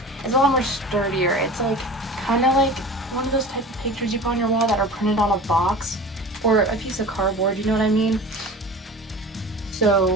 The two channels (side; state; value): both; normal; correlation 0.37